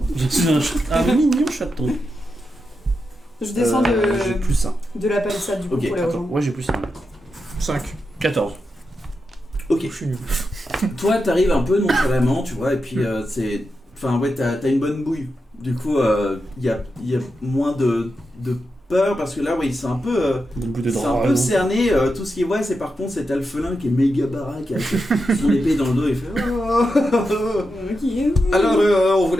Je suis un mignon chaton. Je descends J'ai plus 1. de la palissade du coup Ok, pour les Attends, rejoindre. ouais j'ai plus 1. 5. 14. Ok. Je suis nul. Toi, t'arrives un peu nonchalamment, tu vois, et puis c'est. Enfin, ouais, t'as une bonne bouille. Du coup, il y a moins de peur parce que là, oui, c'est un peu. C'est un peu cerné. Tout ce qu'il voit, c'est par contre cet alphelin qui est méga baraque avec son épée dans le dos. Il fait. Ok. Alors, on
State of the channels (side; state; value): both; normal; correlation 0.88